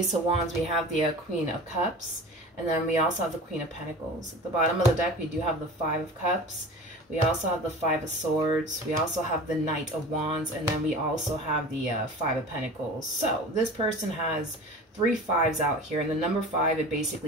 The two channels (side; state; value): both; normal; correlation 0.36